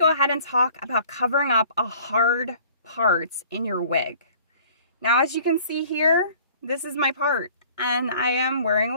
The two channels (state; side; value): inverted; both; correlation -0.51